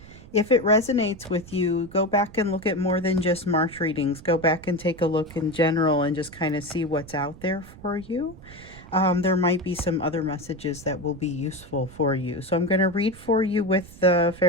if it resonates with you, go back and look at more than just March readings. Go back and take a look in general and just kind of see what's out there for you. There might be some other messages that will be useful for you. So I'm going to read for you with the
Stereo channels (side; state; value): right; noise; rumble, 19 dB below the sound